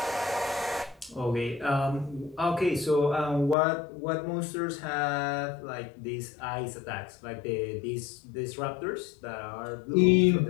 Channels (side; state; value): right; drops out; at 3.6 s